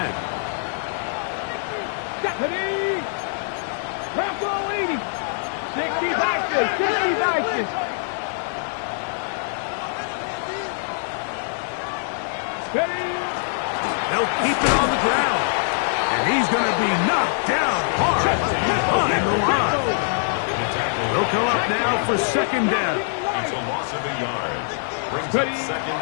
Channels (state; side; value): silent; right; digital silence